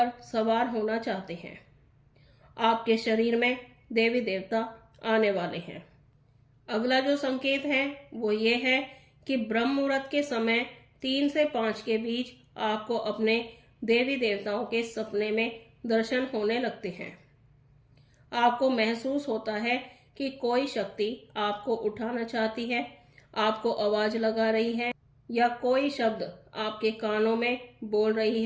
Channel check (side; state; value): both; identical; correlation 1.00